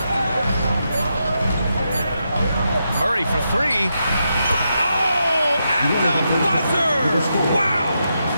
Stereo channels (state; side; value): inverted; both; correlation -0.84